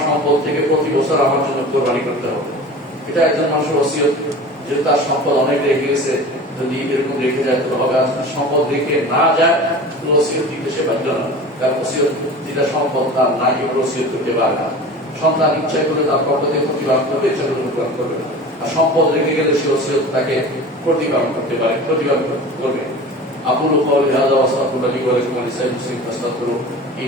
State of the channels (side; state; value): both; normal; correlation 0.37